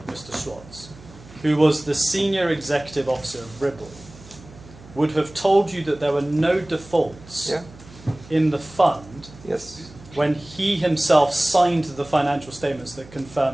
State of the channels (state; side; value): noise; right; hum, 20 dB below the sound